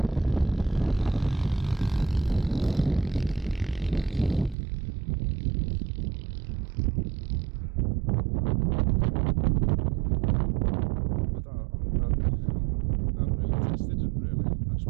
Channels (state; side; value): drops out; left; at 4.5 s